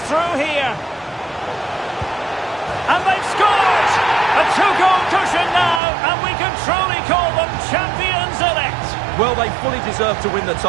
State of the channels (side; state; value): left; drops out; at 5.8 s